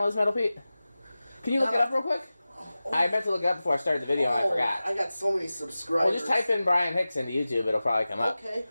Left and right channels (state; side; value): inverted; both; correlation -0.96